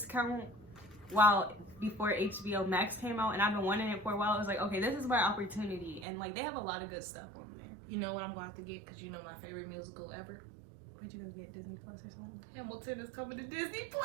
before HBO Max came out, and I've been wanting it for a while. I was like, okay, this is my opportunity, and like they have a lot of good stuff on there. You know what I'm going to have to get because you know my favorite musical ever. Would you go get Disney Plus or something? Hamilton is coming to Disney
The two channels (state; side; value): drops out; left; at 6.1 s